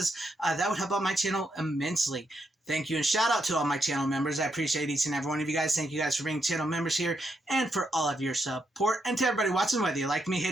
that would help out my channel immensely. Thank you and shout out to all my channel members. I appreciate each and every one of you guys. Thank you guys for being channel members here and for all of your support. And to everybody watching, whether you like me,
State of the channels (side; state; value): both; normal; correlation 0.80